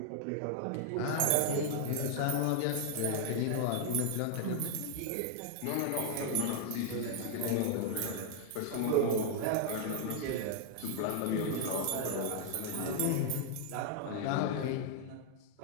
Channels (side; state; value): both; different; correlation -0.01